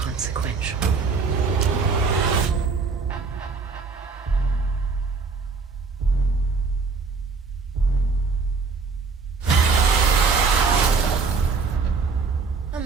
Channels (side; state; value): left; quieter; 4.6 dB